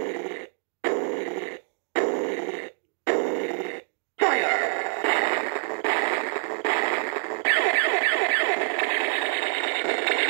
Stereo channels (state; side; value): silent; left; digital silence